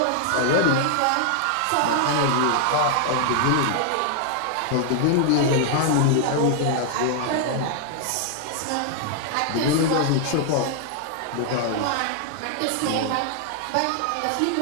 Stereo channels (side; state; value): both; different; correlation 0.00